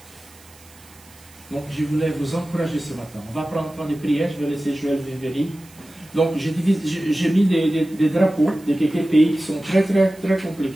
Donc, je voulais vous encourager ce matin. On va prendre un temps de prière, je vais laisser Joël venir. Donc, j'ai mis des drapeaux de quelques pays qui sont très, très, très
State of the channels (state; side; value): noise; right; hiss, 25 dB below the sound